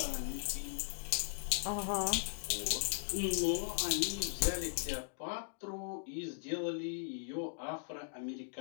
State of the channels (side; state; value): right; silent; digital silence